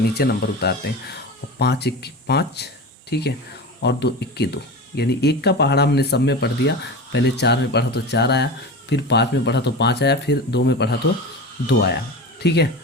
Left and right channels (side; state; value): both; normal; correlation 0.29